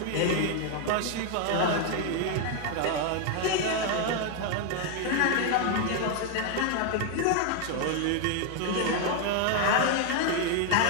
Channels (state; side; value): different; both; correlation 0.01